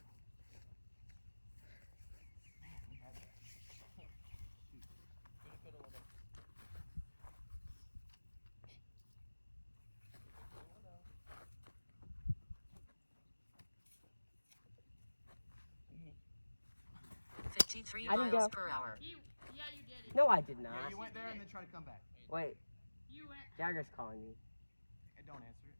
We had that. Shoot. 53 I didn't miles go. per hour. Yeah, you did it. No, I did not. Yeah, you went there and then tried to come back. Wait, You went. Jagger's calling you. Hey, don't answer it.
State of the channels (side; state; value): both; inverted; correlation -1.00